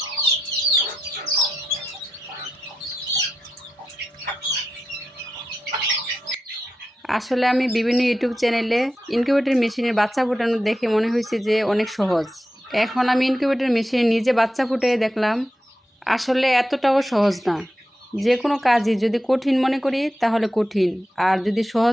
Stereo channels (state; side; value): normal; both; correlation 0.89